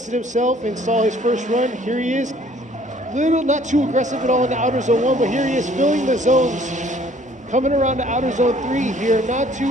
himself and saw his first run. Here he is. Not too aggressive at all in the outer zone 1, but here he is filling the zones. Coming around to outer zone 3 here. Not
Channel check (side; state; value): both; normal; correlation 0.58